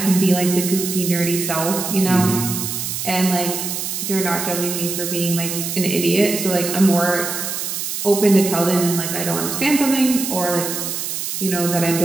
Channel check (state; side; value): noise; right; hiss, 4 dB below the sound